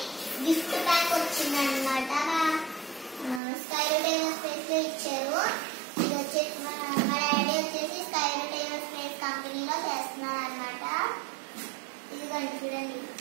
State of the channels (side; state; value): left; drops out; at 3.4 s